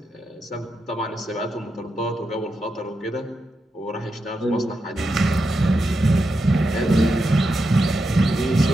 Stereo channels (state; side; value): normal; both; correlation 0.86